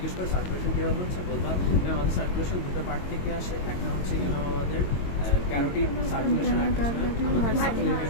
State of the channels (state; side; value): late; right; 22 ms